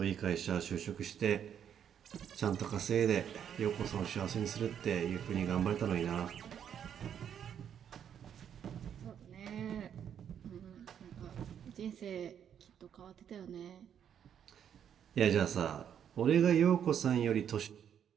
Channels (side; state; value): left; quieter; 8.8 dB